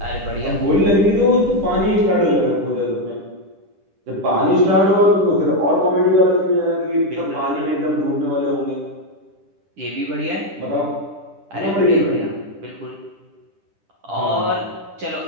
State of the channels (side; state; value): left; late; 10 ms